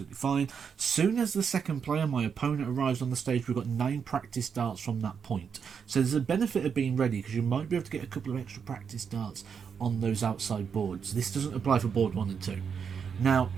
fine. Soon as the second player, my opponent, arrives on the stage, we've got 9 practice darts from that point. So there's a benefit of being ready, because you might be able to get a couple of extra practice darts on those outside boards. This doesn't apply for board 1 and 2. Now,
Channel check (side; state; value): left; quieter; 6.7 dB